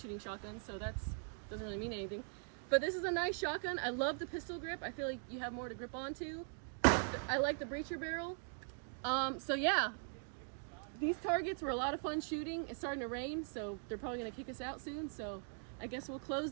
shotguns, so that's doesn't really mean anything. But this is a nice shotgun. I love the pistol grip. I feel like you have more to grip onto. I like the breacher barrel. So yeah, these targets were a lot of fun shooting. It's starting to rain, so they're probably gonna kick us out soon. So I guess we'll close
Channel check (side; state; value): left; silent; 50 dB below the other